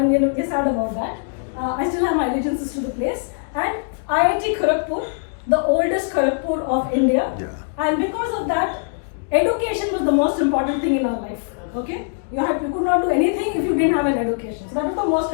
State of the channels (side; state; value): right; silent; digital silence